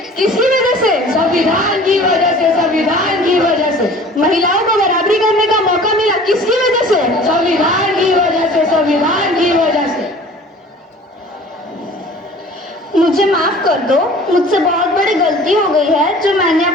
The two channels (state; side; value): normal; both; correlation 0.46